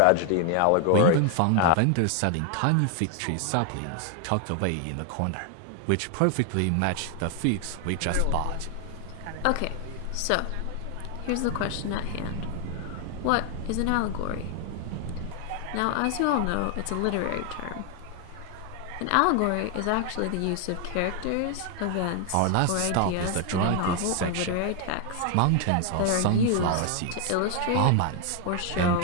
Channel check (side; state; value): both; different; correlation 0.00